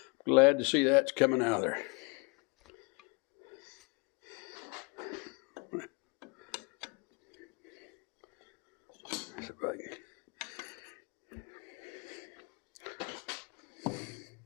Glad to see that's coming out of there. See if I can.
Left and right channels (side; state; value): right; quieter; 31.1 dB